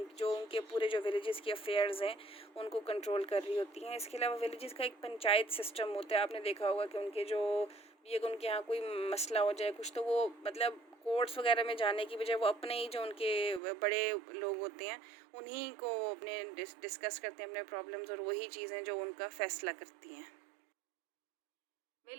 पूरे जो विलेजेस के अफेयर्स हैं उनको कंट्रोल कर रही होती हैं। इसके अलावा विलेजेस का एक पंचायत सिस्टम होता है। आपने देखा होगा कि उनके यहाँ कोई मसला हो जाए कुछ, तो वो मतलब कोर्ट्स वगैरह में जाने की बजाय वो अपने ही जो उनके बड़े लोग होते हैं उन्हीं को अपने डिस्कस करते हैं अपने प्रॉब्लम्स और वही चीज़ें जो उनका फैसला करती हैं।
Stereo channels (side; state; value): left; drops out; at 13.6 s